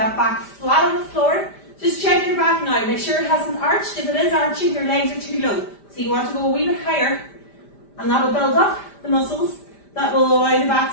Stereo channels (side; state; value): right; late; 5.0 ms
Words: back flat on the floor. Just check your back now. Make sure it hasn't arched. If it is arching, your legs are too low. So you want to go a wee bit higher. And that will build up the muscles that will allow the back